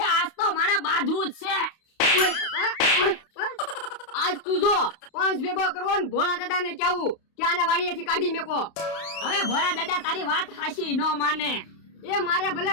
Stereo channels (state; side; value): late; right; 32 ms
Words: આજ તો મારે બાંધવું જ છે. ઓય બાપા. આજ તું જો 5 ભેગો કરવો ને ભોળા દાદા ને કેવું કે આને વાડીએથી કાઢી મેકો. હવે ભોળા દાદા તારી વાત હાચી ન માને. એ મારે ભલે